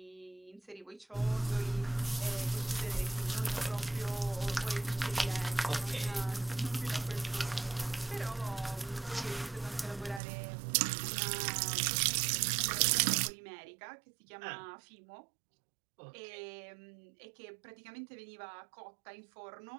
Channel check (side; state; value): left; drops out; at 10.2 s